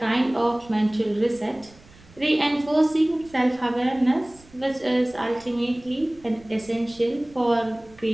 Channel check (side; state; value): right; noise; rumble, 25 dB below the sound